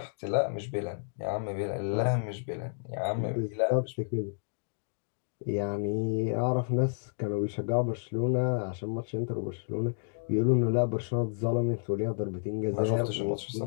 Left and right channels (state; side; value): silent; right; digital silence